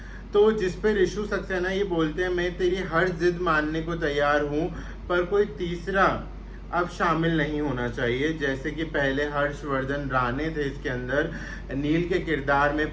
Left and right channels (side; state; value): both; identical; correlation 1.00